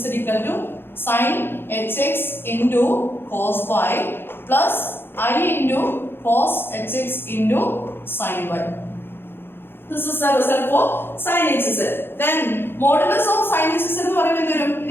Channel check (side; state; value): right; late; 0.10 ms